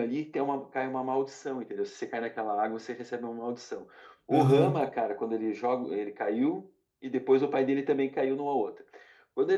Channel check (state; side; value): identical; both; correlation 1.00